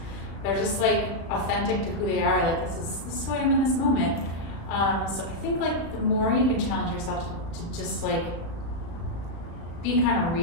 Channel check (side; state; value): right; late; 36 ms